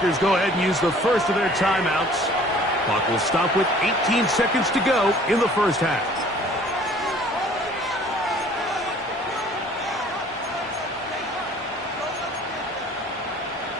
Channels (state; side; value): normal; both; correlation 0.52